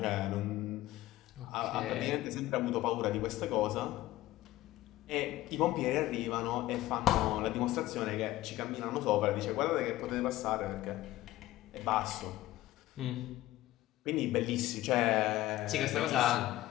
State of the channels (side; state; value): right; quieter; 15.9 dB